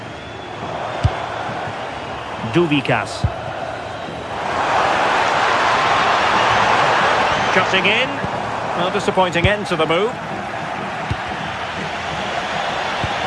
Duvikas. Cutting in. Well, disappointing end to the move.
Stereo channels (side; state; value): both; identical; correlation 1.00